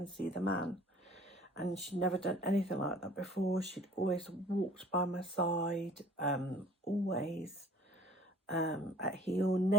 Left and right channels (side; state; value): both; normal; correlation 0.50